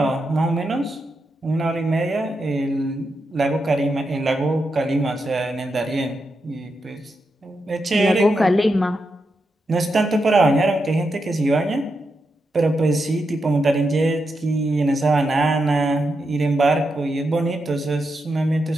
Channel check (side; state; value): both; normal; correlation 0.85